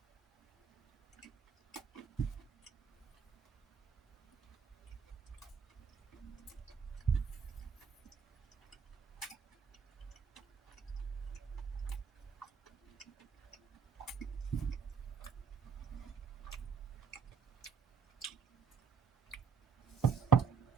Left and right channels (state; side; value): quieter; left; 6.6 dB